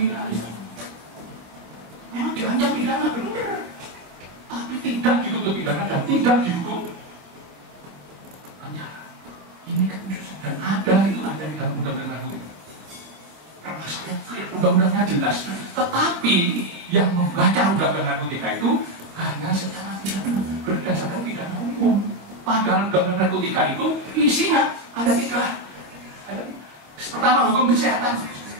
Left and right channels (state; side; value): late; left; 26 ms